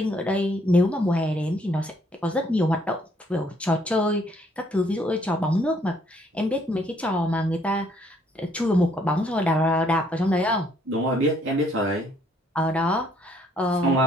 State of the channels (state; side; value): normal; both; correlation 0.66